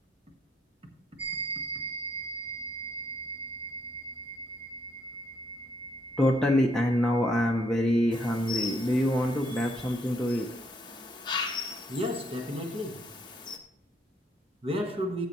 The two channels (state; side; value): normal; both; correlation 0.71